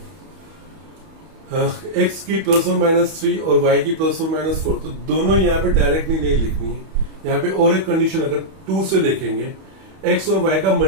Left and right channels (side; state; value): left; late; 31 ms